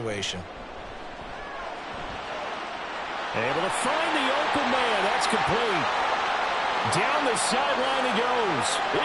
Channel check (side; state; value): both; identical; correlation 1.00